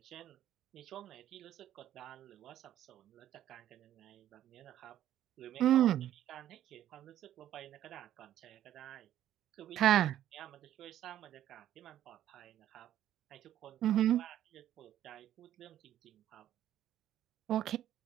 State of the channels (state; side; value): quieter; left; 11.8 dB